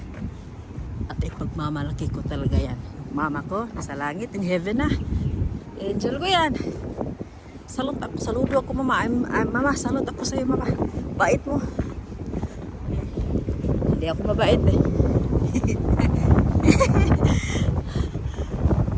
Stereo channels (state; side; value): identical; both; correlation 1.00